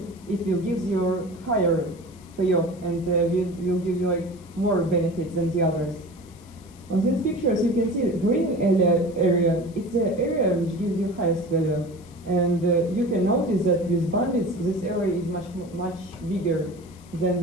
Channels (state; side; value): noise; left; hiss, 26 dB below the sound